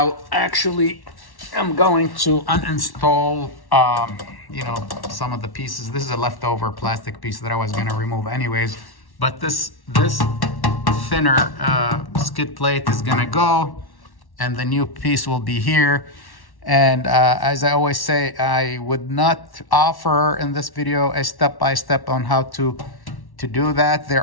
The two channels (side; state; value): right; late; 1.1 ms